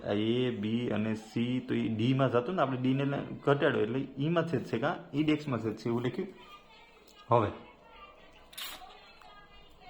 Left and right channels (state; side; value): identical; both; correlation 1.00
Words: આ એ બી અને સી, તો એ ડીમાં જતું ને, આપણે ડીને ઘટાડો એટલે ઈમાં છેદ છે કાં ઈ ડેક્સમાં છેદ છે, એવું લખ્યું. હવે